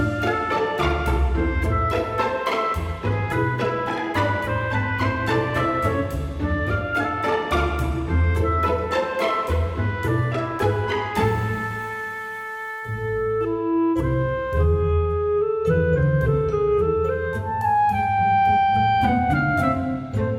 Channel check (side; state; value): both; identical; correlation 1.00